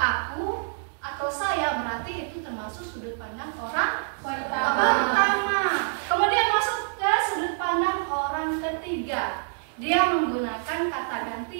atau saya, berarti itu termasuk sudut pandang orang pertama. Kemudian masuk ke sudut pandang orang ketiga. Dia menggunakan kata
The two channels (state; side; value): silent; left; 61 dB below the other